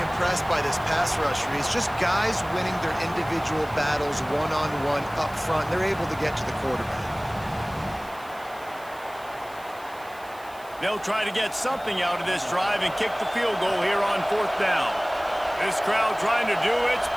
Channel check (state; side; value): noise; right; hiss, 23 dB below the sound